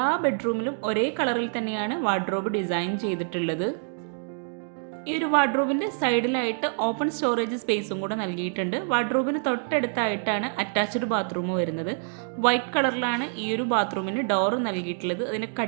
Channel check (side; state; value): left; silent; digital silence